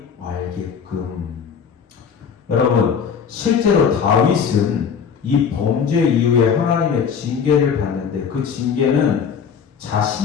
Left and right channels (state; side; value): quieter; right; 6.8 dB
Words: 알게끔. 여러분, 실제로 다윗은 이 범죄 이후에 하나님의 징계를 받는데 그 징계는